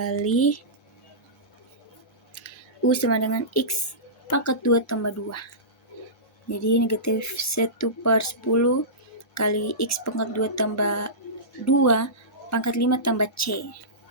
u sama dengan x pangkat 2 tambah 2. Jadi negatif 1 per 10 kali x pangkat 2 tambah 2 pangkat 5 tambah c.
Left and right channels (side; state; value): both; normal; correlation -0.20